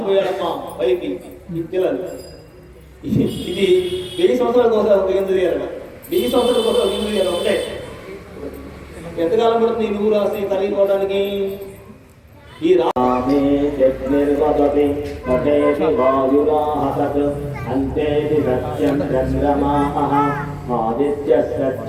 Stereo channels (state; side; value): identical; both; correlation 1.00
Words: పైకి ఈ పిల్లలు. ఇది 1000 సంవత్సరాల కోసం ఒక ఎందుకు చేయాలి, 1000 సంవత్సరాల కోసం ఒక ఎందుకు చేయాలి. ఒకటే ఎంతకాలం పడుతుంది నువ్వు రాసి తరిగిపోవడానికి? ఈ రామే నిర్వదతి మహేషి వాయురాహత్ అంతేతి సత్యం చంద్రమాః ఆదిత్య